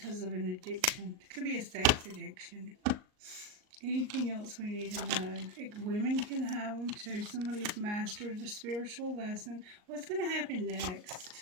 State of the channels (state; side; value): late; left; 38 ms